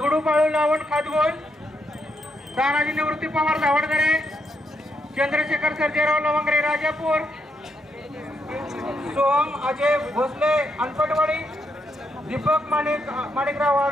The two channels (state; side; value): normal; both; correlation 0.79